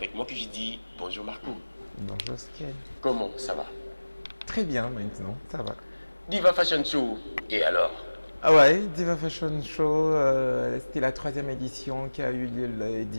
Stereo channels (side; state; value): both; inverted; correlation -1.00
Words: moi que j'ai dit bonjour Marco. Bonjour Skiel. Comment ça va? Très bien maintenant, ça va. Diva Fashion Show, et alors? Ah ouais, Diva Fashion Show, c'était la troisième édition qui a eu lieu le